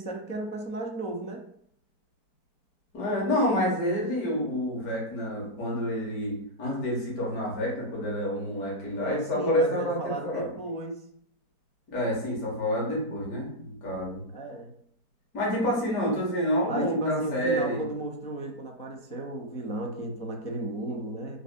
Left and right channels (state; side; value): late; right; 4.5 ms